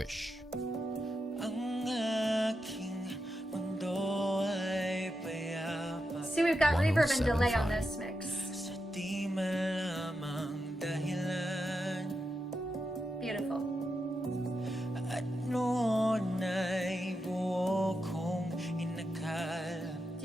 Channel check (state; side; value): normal; both; correlation 0.87